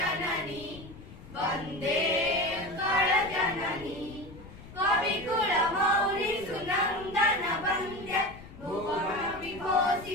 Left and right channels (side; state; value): left; noise; rumble, 17 dB below the sound